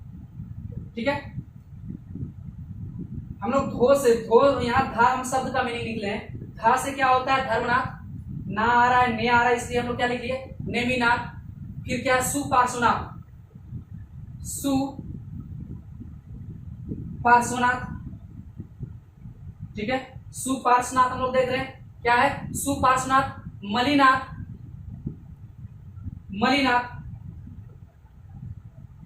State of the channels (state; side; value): identical; both; correlation 1.00